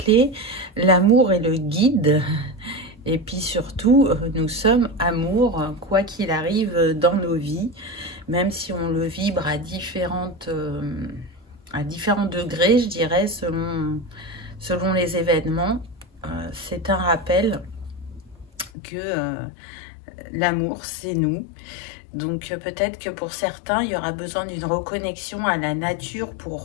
l'amour est le guide. Et puis surtout, nous sommes amour, quoi qu'il arrive dans nos vies, même si on le vibre à différents degrés, je dirais, selon les événements. C'est un rappel que l'amour, c'est nous. Donc peut-être que pour certains, il y aura besoin d'une reconnexion à la nature pour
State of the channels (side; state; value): right; drops out; at 18.7 s